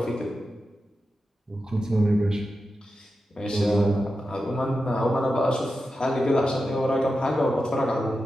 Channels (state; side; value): normal; both; correlation 0.90